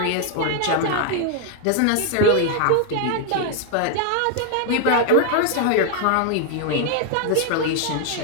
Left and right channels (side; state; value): both; different; correlation 0.01